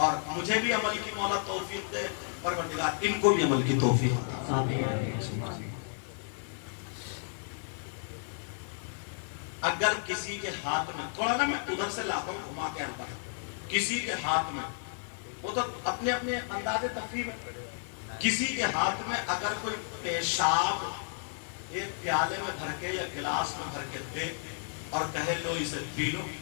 مجھے بھی عمل کی مولا توفیق دے، پروردگار ان کو بھی عمل کی توفیق دے. اگر کسی کے ہاتھ میں، تھوڑا نا میں ادھر سے لاتا ہوں گھما کے آتا ہوں، کسی کے ہاتھ میں، وہ تو اپنے اپنے انداز تفریح میں، کسی کے ہاتھ میں اگر کوئی پیشاب ایک پیالے میں بھر کے یا گلاس میں بھر کے دے اور کہے لو اسے پی لو،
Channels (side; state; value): right; silent; digital silence